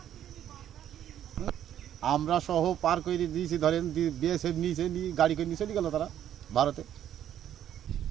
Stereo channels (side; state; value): left; quieter; 10.7 dB